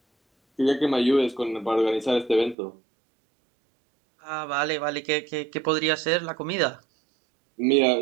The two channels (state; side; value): drops out; left; at 2.6 s